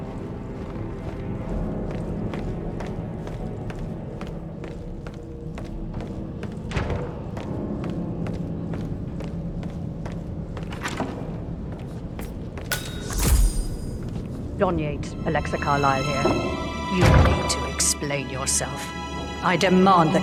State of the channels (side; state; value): both; identical; correlation 1.00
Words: Don Yates, Alexa Carlyle here. You need to explain yourself. I demand